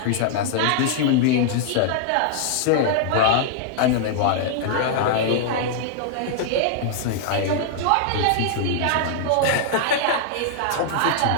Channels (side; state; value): both; different; correlation -0.01